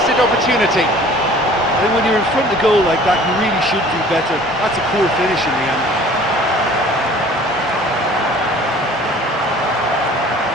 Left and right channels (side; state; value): both; normal; correlation 0.49